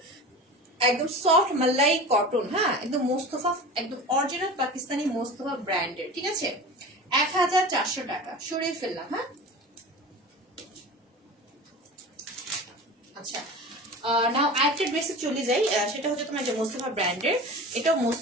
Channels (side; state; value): both; normal; correlation 0.34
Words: একদম সফট মালাই কটন, হ্যাঁ একদম মোস্তফা, একদম অরিজিনাল পাকিস্তানি মোস্তফা ব্র্যান্ডের, ঠিক আছে? 1400 টাকা সরিয়ে ফেললাম, হ্যাঁ। আচ্ছা নাও আরেকটা ড্রেসে চলে যাই, সেটা হচ্ছে তোমার যে মোস্তফা ব্র্যান্ডের, এটাও